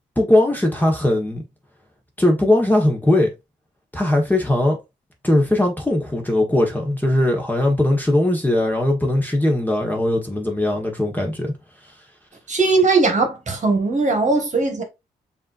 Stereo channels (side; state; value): both; normal; correlation 0.80